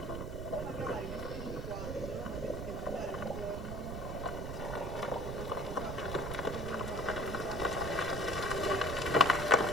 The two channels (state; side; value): noise; right; rumble, 5 dB below the sound